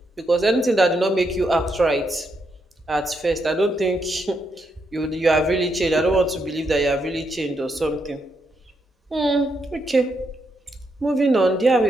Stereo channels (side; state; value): both; normal; correlation 0.80